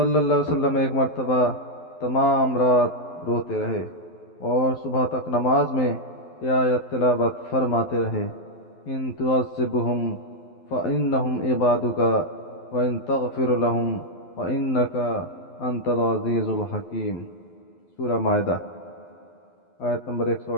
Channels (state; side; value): late; right; 12 ms